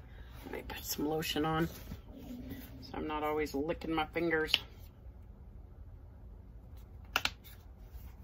me put some lotion on so I'm not always licking my fingers.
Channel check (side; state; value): both; identical; correlation 1.00